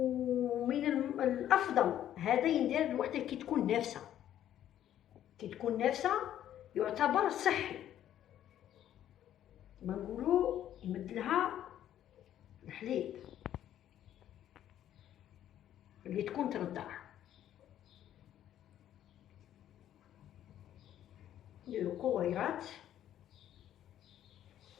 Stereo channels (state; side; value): quieter; right; 11.4 dB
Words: الافضل هذا يندير الوحده كي تكون نافسه، كي تكون نافسه يعتبر صحي، ما نقولوا يمد لها الحليب اللي تكون ترضع. نديرو كويرات.